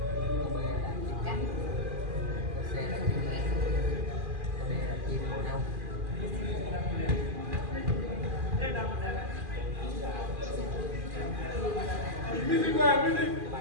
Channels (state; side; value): late; left; 2.4 ms